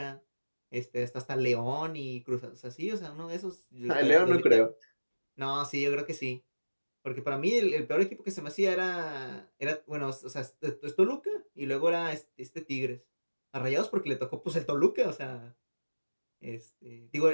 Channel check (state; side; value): inverted; both; correlation -1.00